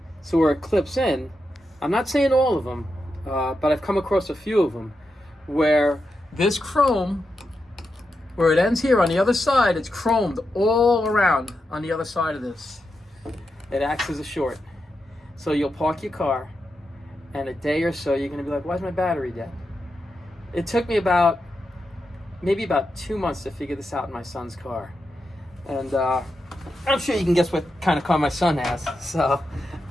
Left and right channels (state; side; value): normal; both; correlation 0.87